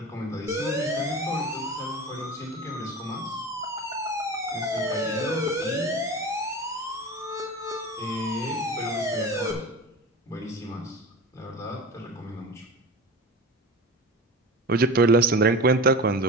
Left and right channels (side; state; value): both; normal; correlation 0.31